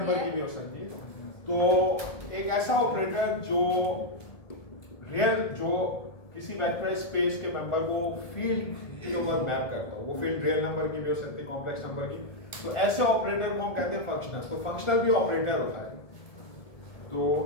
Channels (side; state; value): right; late; 1.7 ms